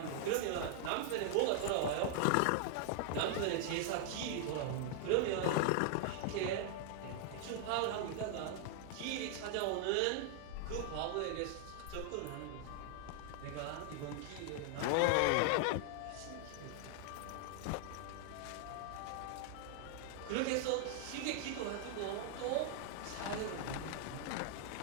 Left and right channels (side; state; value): both; different; correlation 0.00